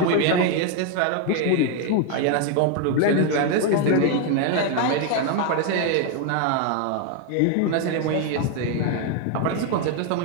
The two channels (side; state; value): both; different; correlation 0.01